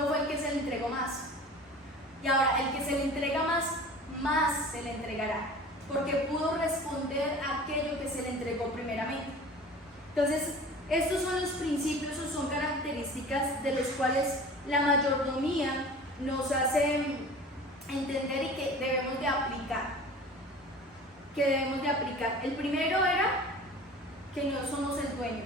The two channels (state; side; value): normal; both; correlation 0.40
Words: fue el que se le entregó más. Y ahora el que se le entrega más se le entregará, porque pudo responder a aquello que se le entregó primeramente. Entonces, estos son los principios o son características de los cuales la mayordomía nos hace entender y que debemos de aplicar. El primero era que no somos el dueño